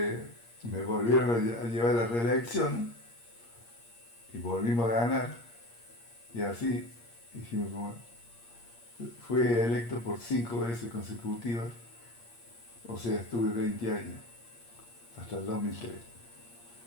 me volvieron a llevar a la reelección y volvimos a ganar y así hicimos fui electo por 5 veces consecutivas, o sea, estuve 20 años, hasta el 2003.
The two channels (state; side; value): late; right; 8.6 ms